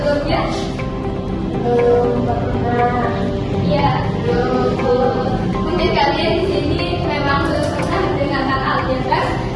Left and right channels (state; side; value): identical; both; correlation 1.00